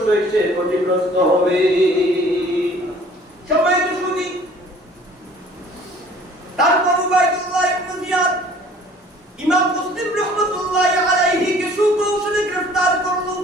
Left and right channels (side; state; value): both; normal; correlation 0.52